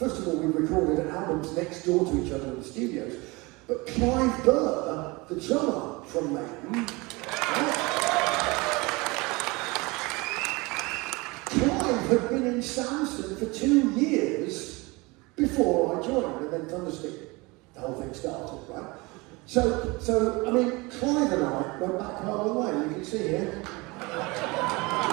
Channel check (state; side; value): quieter; left; 24.7 dB